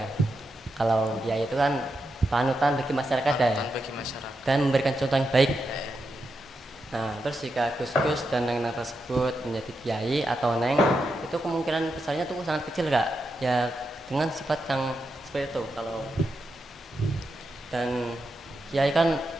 kalau kiai itu kan panutan bagi masyarakat ya, dan memberikan contoh yang baik. Nah, terus jika Gus-Gus dan Neng tersebut menjadi kiai atau Neng, itu kemungkinan besarnya tuh sangat kecil Kak. Ya dengan sifat yang seperti itu. Kalau dan kiai kan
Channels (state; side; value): normal; both; correlation 0.86